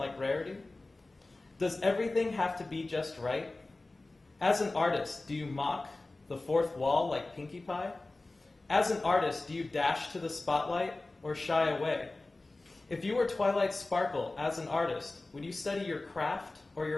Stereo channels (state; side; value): quieter; right; 3.1 dB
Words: Rarity? Does everything have to be just right? As an artist, do you mock the fourth wall like Pinkie Pie? As an artist, do you dash to the spotlight or shy away? If you were Twilight Sparkle as an artist, would you study your craft or